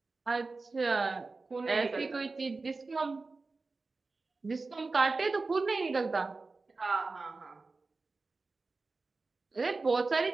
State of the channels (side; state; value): left; quieter; 3.8 dB